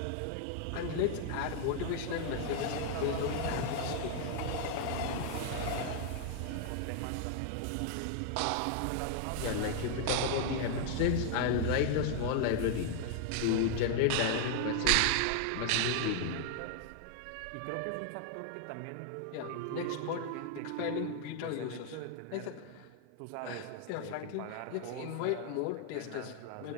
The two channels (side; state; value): both; different; correlation 0.00